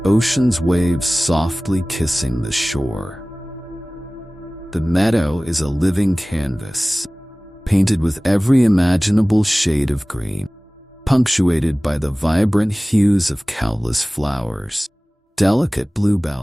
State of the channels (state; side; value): normal; both; correlation 0.98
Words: ocean's waves softly kissing the shore. The meadow is a living canvas, painted with every imaginable shade of green, punctuated by the vibrant hues of countless flowers. Delicate